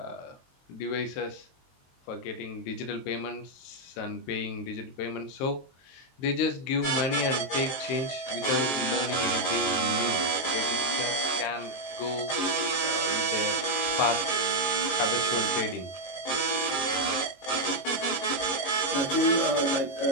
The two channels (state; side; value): late; right; 22 ms